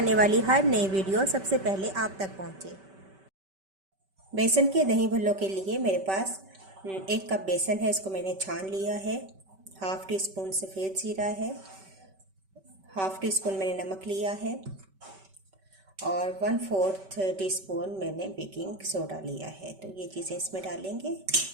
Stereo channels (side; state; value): left; late; 5.2 ms